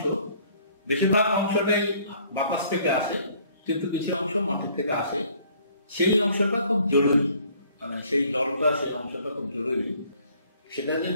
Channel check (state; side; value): inverted; both; correlation -0.59